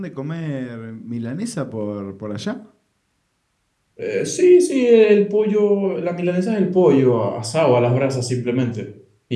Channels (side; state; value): both; identical; correlation 1.00